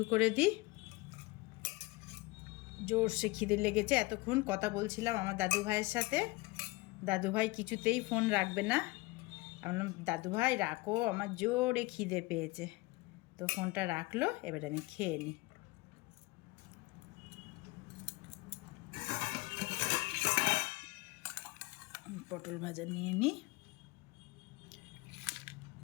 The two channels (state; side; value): quieter; right; 22.7 dB